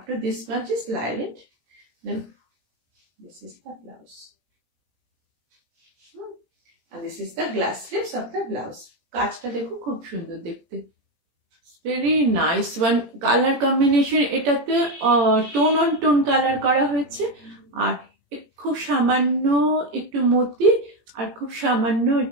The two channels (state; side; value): late; left; 18 ms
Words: much is lining. Then this is the blouse, and this is the glass slips of the blouse. কাজটা দেখো খুব সুন্দর দেখতে, very nice one. Colour combination এটাতে tone on tone colour করা হয়েছে, আর খুব সামান্য একটু মতি আর খুব সামান্য